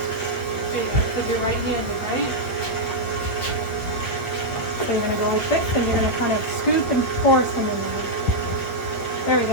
There you go, because you're right-handed, right? So you're gonna go with this, and you're gonna kind of scoop and pour some in there. There we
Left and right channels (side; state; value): right; late; 8.4 ms